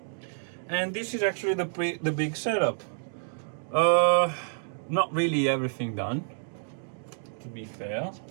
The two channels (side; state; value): left; silent; digital silence